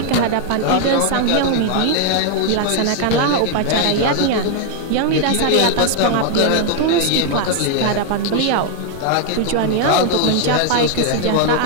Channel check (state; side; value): different; both; correlation 0.00